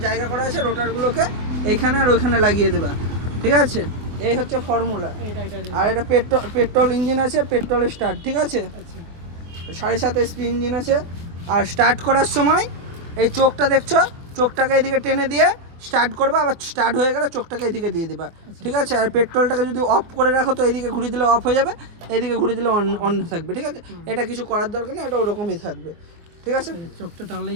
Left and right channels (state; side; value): late; left; 24 ms